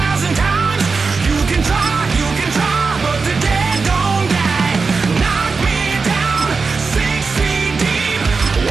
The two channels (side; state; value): left; quieter; 4.5 dB